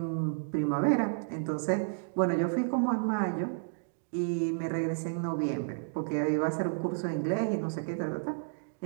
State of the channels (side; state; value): left; silent; digital silence